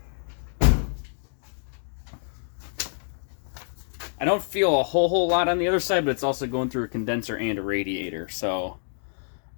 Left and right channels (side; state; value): right; silent; digital silence